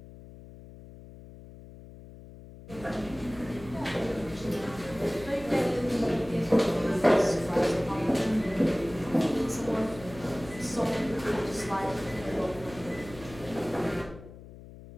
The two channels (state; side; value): noise; left; hum, 17 dB below the sound